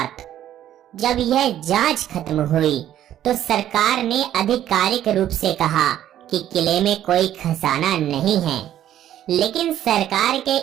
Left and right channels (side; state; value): left; quieter; 11.7 dB